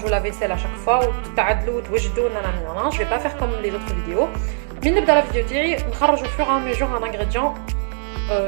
لا فيسيل اشاك فوا وتعدلوا وتوجدوا نانا. جو في با فير كوم لي زوتر فيديو. من نبدا لا فيديو تاعي نخرجوا فور ان ميجور ان انغريديون.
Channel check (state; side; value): silent; left; digital silence